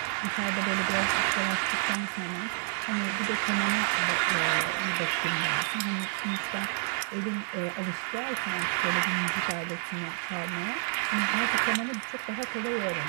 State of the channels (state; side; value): silent; left; 55 dB below the other